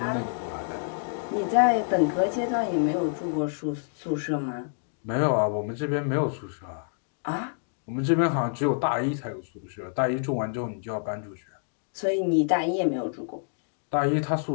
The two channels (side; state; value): right; silent; digital silence